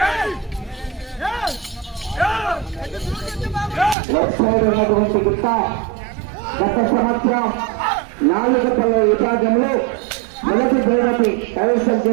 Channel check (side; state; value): left; drops out; at 4.0 s